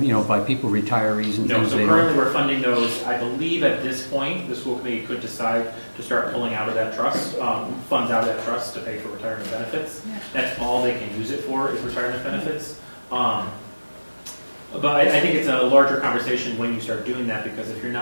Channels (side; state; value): both; inverted; correlation -1.00